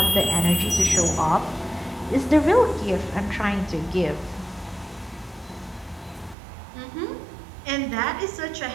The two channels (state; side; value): drops out; left; at 6.4 s